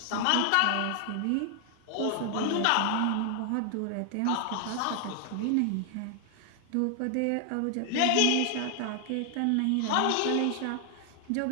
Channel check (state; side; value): different; both; correlation 0.00